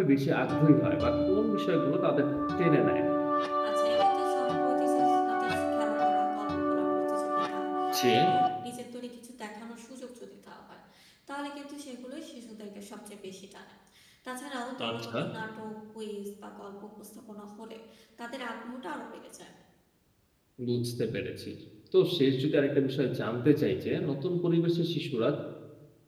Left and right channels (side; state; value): both; identical; correlation 1.00